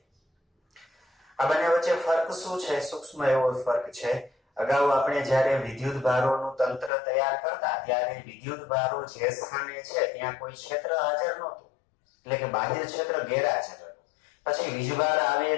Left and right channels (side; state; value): right; drops out; at 6.9 s